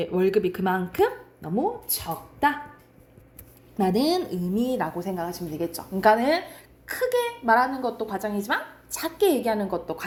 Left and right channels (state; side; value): identical; both; correlation 1.00